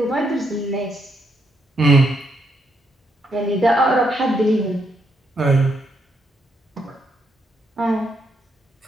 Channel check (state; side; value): normal; both; correlation 0.77